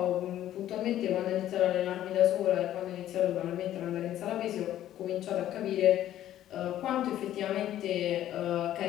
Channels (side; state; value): right; quieter; 12.4 dB